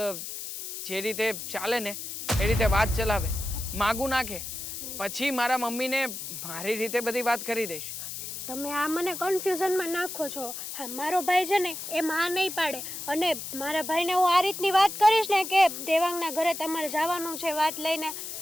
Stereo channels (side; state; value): left; noise; hiss, 7 dB below the sound